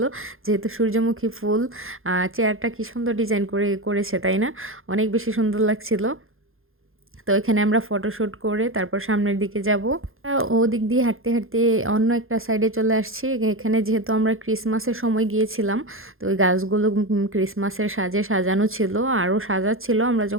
যেহেতু সূর্যমুখী ফুল। চেয়ারটা কি সুন্দর ডিজাইন করেছে, তাই না? অনেক বেশি সুন্দর লাগছিল। তো এখানে আমরা ফটোশ্যুট করে তারপর সামনের দিকে যাব। ওদিক দিয়ে হাঁটতে হাঁটতে অন্য একটা সাইডে চলে আসছি। এখানে যেহেতু আমরা ক্রিসমাসের সময় গিয়েছিলাম, তো ওই গাছগুলো ক্রিসমাসের সাজে সাজানো ছিল, আরও সাজাচ্ছিল। আমরা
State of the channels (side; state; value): left; late; 0.60 ms